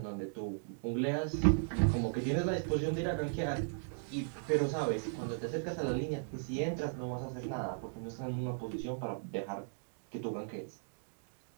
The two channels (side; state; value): left; silent; digital silence